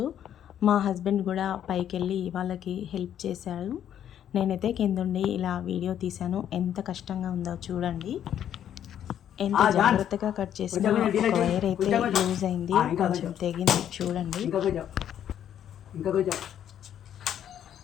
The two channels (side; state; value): right; quieter; 10.1 dB